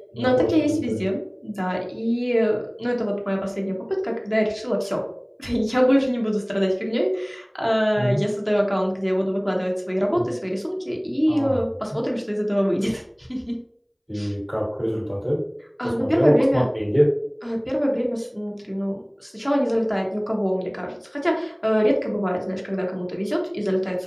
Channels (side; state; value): both; identical; correlation 1.00